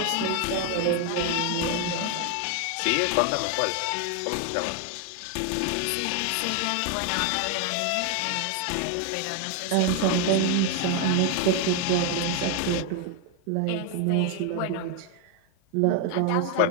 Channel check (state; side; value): different; both; correlation 0.01